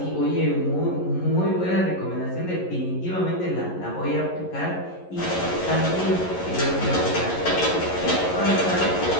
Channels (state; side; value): late; right; 11 ms